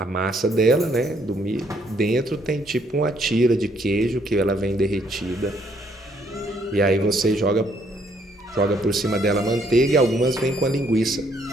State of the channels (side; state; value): both; normal; correlation 0.69